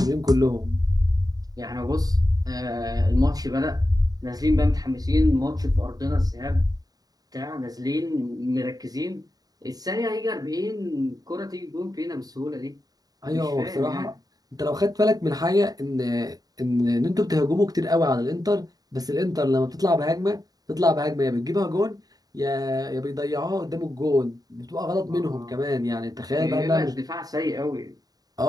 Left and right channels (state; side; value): late; left; 0.18 ms